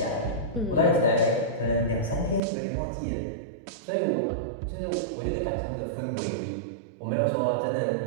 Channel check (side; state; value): left; drops out; at 2.4 s